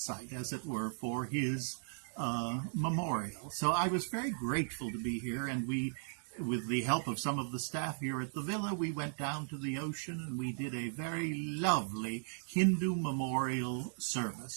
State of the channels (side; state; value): left; silent; digital silence